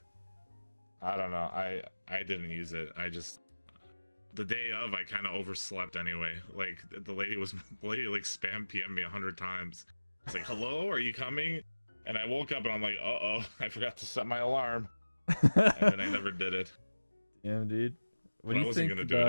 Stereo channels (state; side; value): inverted; both; correlation -1.00